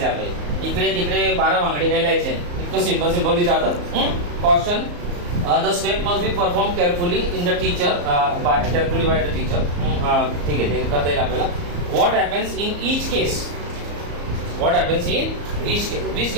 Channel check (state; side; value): late; left; 34 ms